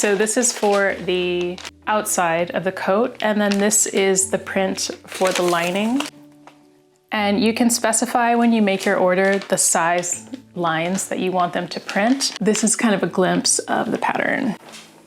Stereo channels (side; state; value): both; identical; correlation 1.00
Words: this is for the outside of the coat, and then this is the print for the lining. And you can specify when you make your order the size lines that you want them to print. This is kind of a glimpse of the pattern.